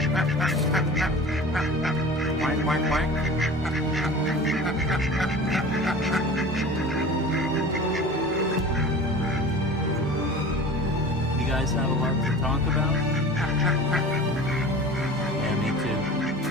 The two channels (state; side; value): normal; both; correlation 0.38